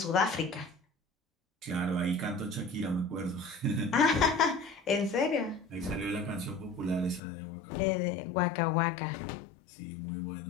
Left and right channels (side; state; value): right; drops out; at 7.2 s